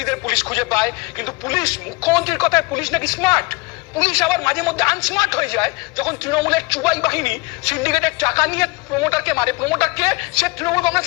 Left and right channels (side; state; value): right; quieter; 26.2 dB